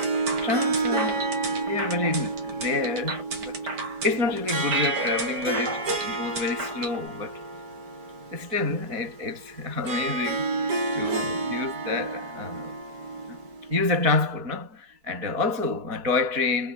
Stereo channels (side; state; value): left; late; 4.5 ms